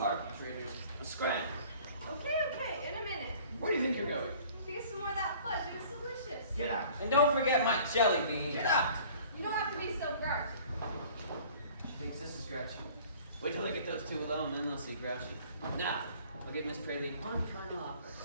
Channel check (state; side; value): inverted; both; correlation -0.50